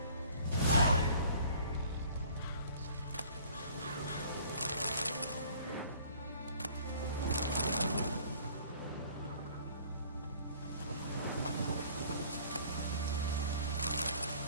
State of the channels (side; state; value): both; inverted; correlation -0.53